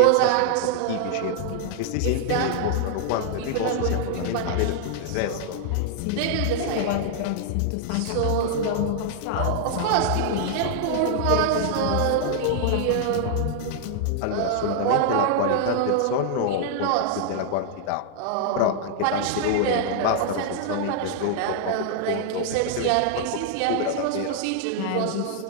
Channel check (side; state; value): both; different; correlation -0.01